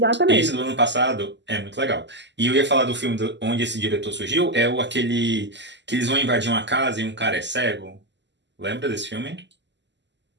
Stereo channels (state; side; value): late; left; 0.51 ms